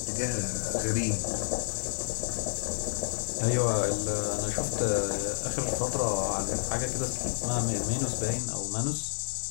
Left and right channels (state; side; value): silent; right; 56 dB below the other